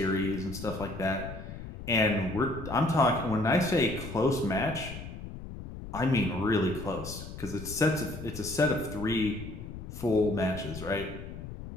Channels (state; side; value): noise; left; rumble, 10 dB below the sound